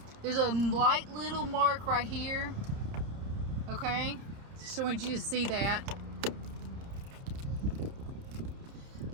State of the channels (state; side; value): late; left; 30 ms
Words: There's a light little mark right here, okay? Just want you to see that.